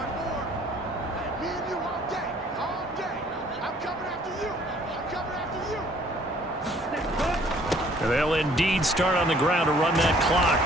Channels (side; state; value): both; normal; correlation 0.58